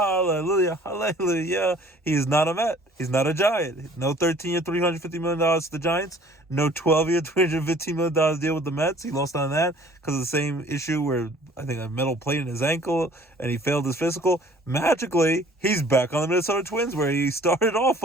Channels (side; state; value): both; normal; correlation 0.53